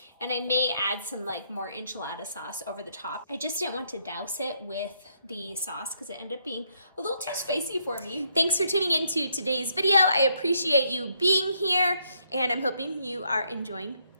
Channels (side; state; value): both; inverted; correlation -0.73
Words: And I may add some more enchilada sauce over the top. I just didn't want to douse it with the sauce because it ended up being a little too spicy for me. Thanks for tuning into today's video. I appreciate you being here, and I'm hoping you are enjoying